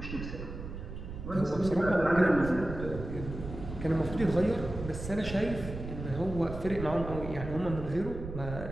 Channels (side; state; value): right; noise; rumble, 9 dB below the sound